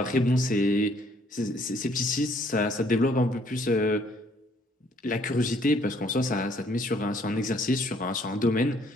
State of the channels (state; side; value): normal; both; correlation 0.64